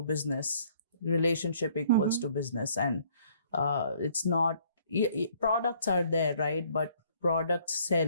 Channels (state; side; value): inverted; both; correlation -0.61